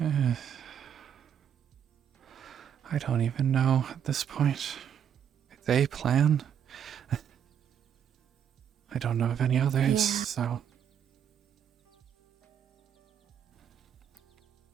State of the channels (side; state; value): left; quieter; 8.7 dB